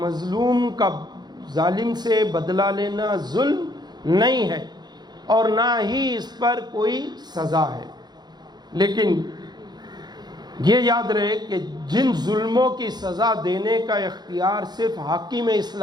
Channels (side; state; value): left; late; 0.20 ms